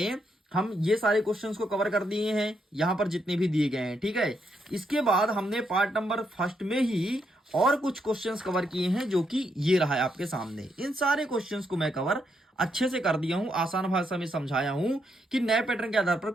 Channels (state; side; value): normal; both; correlation 0.79